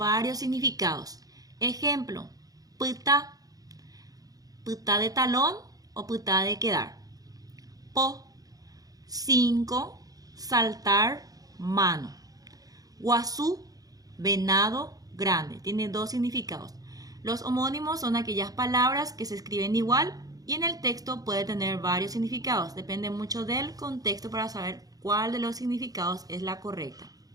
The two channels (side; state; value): left; late; 0.18 ms